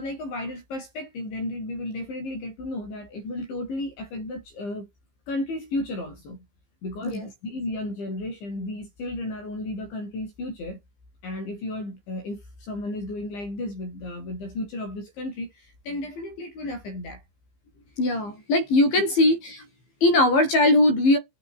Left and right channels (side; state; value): right; late; 15 ms